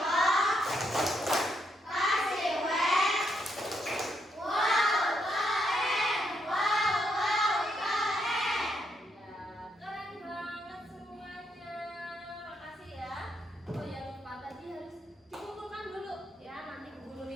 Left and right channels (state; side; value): normal; both; correlation 0.77